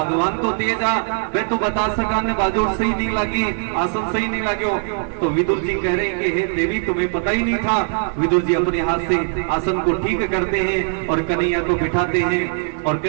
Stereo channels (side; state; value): left; silent; 57 dB below the other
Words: तो तेज आ, मैं तो बता सका ने बाजोड़ सही नहीं लगी, आसन सही नहीं लगे। तो विदुर जी कह रहे हैं कि हे देवी तुम्हें पता ही नहीं था। विदुर जी अपने हाथ से आसन को ठीक करते हैं और कन्हैया को बिठाते हैं और